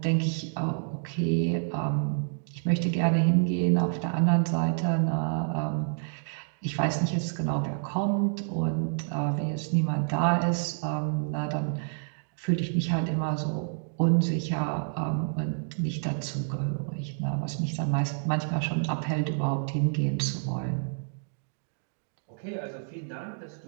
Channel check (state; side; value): silent; left; digital silence